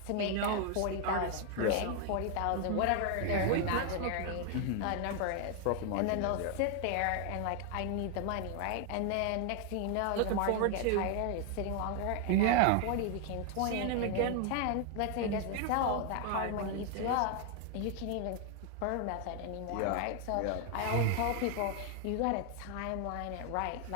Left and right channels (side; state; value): both; different; correlation 0.00